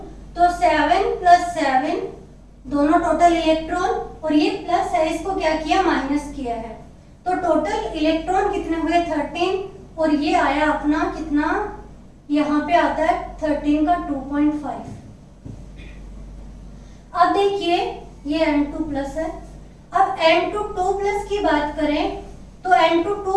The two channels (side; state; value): both; identical; correlation 1.00